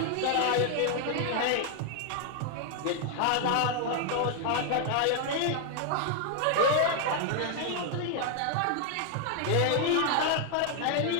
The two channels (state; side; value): different; both; correlation 0.00